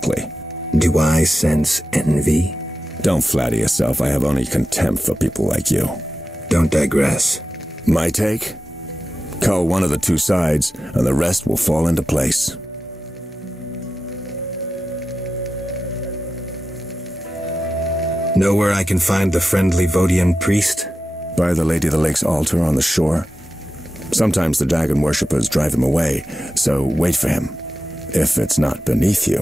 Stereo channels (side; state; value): both; normal; correlation 0.91